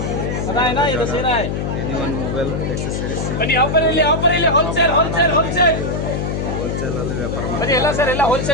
anyone mobile accessories wholesale ಅಲ್ಲಿ ವ್ಯಾಪಾರ ಮಾಡಿ ಎಲ್ಲ ಸರ್ ಎಲ್ಲ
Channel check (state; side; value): noise; left; hum, 2 dB below the sound